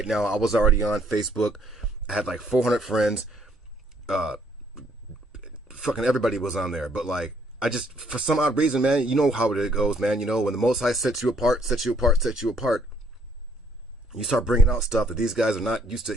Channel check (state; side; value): normal; both; correlation 0.66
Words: now, I was already on Facebook. I had like 400 friends. Fucking everybody was on there. But like, I just, for some odd reason, man, you know how it goes, man. You know, when the Most High sets you apart, you start bringing out stuff that these guys are not used to